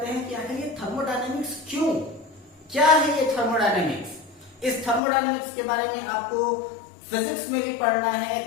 हैं कि आखिर ये थर्मोडायनेमिक्स क्यों, क्या है ये थर्मोडायनेमिक्स। इस थर्मोडायनेमिक्स के बारे में आपको फिजिक्स में भी पढ़ना है,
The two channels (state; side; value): drops out; right; at 5.0 s